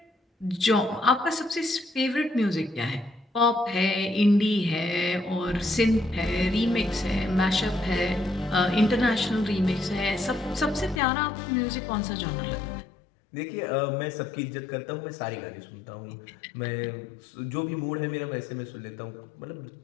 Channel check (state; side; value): drops out; right; at 11.0 s